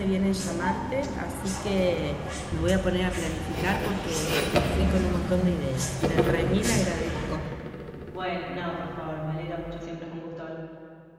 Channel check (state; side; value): identical; both; correlation 1.00